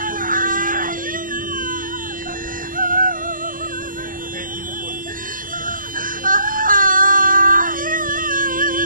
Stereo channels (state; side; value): late; left; 0.40 ms